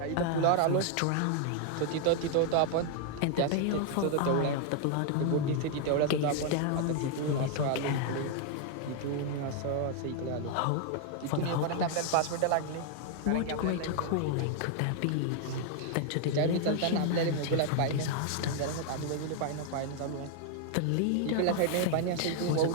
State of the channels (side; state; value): both; different; correlation 0.00